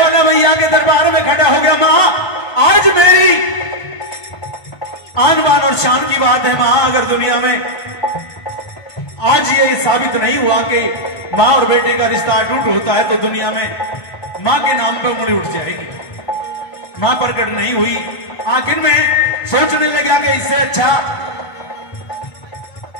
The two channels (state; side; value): late; right; 1.5 ms